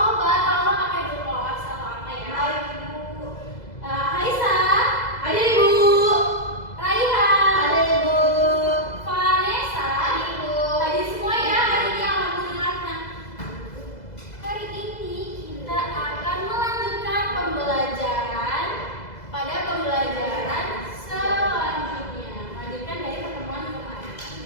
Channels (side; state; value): right; late; 2.0 ms